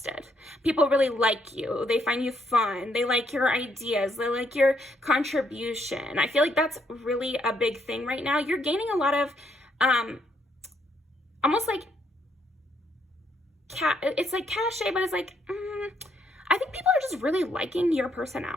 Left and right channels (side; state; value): both; normal; correlation 0.72